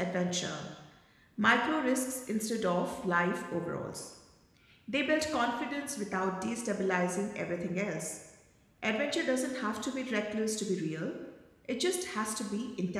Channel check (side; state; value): both; identical; correlation 1.00